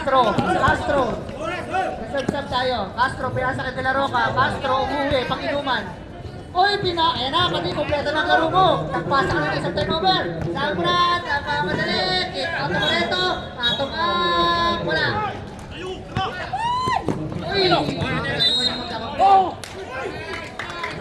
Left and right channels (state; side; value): identical; both; correlation 1.00